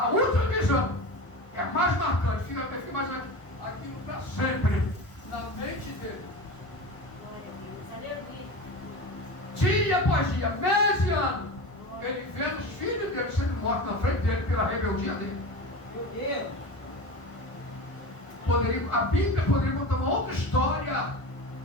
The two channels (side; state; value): right; late; 1.0 ms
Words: última visão é a mais marcante. Fica imaginando aquilo para sempre na mente dele. Dia após dia, mês e ano, ele vendo os filhos dele sendo mortos na frente dele pela rebeldia dele. Meu Deus! A Bíblia poderia contar uma outra história